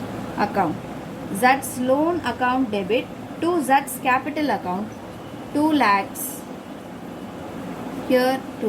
account. Z's loan account debit to Z's capital account, 2 lakhs. Here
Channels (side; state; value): both; identical; correlation 1.00